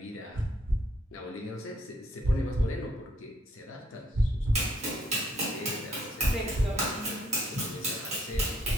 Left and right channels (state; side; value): normal; both; correlation 0.68